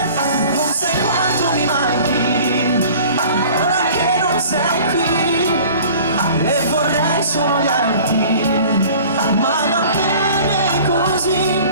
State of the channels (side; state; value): both; inverted; correlation -0.46